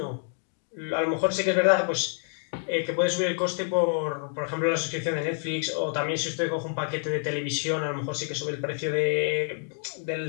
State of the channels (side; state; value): right; silent; 60 dB below the other